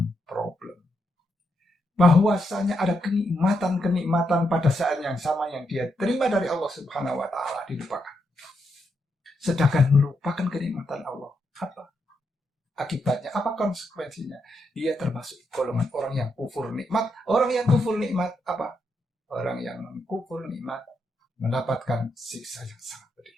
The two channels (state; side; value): normal; both; correlation 0.81